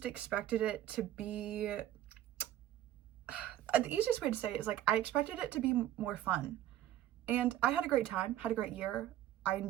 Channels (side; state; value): left; quieter; 12.5 dB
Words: expected it to be, the easiest way to say it is like I expected it to be more fun, and I had a great time, had a great year. I